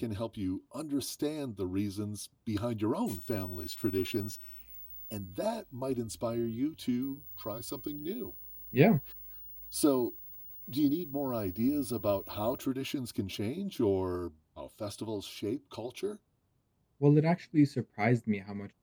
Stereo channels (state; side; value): identical; both; correlation 1.00